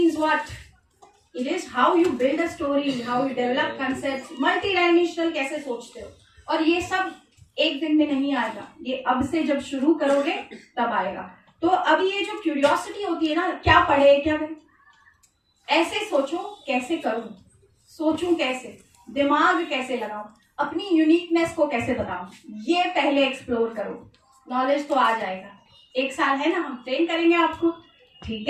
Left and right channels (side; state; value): both; identical; correlation 1.00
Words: what? It is how you build a story, how you develop concept, multi dimensional कैसे सोचते हो. और ये सब एक दिन में नहीं आएगा. ये अब से जब शुरू करोगे तब आएगा. तो अब ये जो क्यूरियोसिटी होती है ना, क्या पढ़े क्या करें, ऐसे सोचो कैसे करूं, सोचूं कैसे, दिमाग कैसे लगाऊं, अपनी यूनिकनेस को कैसे बताऊं, ये पहले एक्सप्लोर करो. नॉलेज तो आ जाएगा. 1 साल है ना, हम ट्रेन करेंगे आपको. ठीक